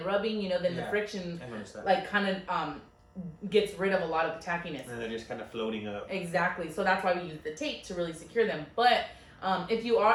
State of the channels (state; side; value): identical; both; correlation 1.00